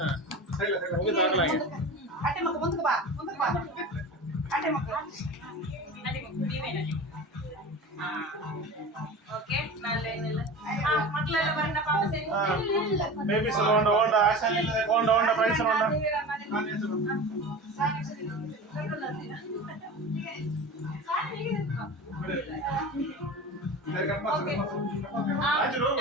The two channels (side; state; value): both; normal; correlation 0.32